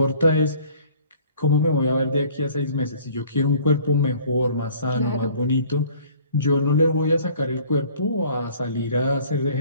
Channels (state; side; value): inverted; both; correlation -0.53